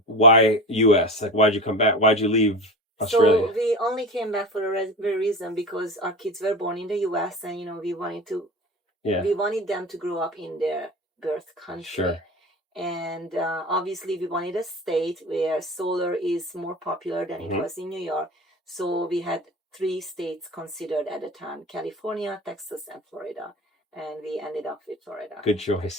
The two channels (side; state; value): both; normal; correlation 0.30